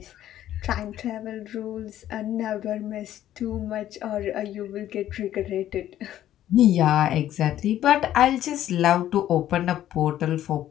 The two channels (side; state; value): right; quieter; 12.3 dB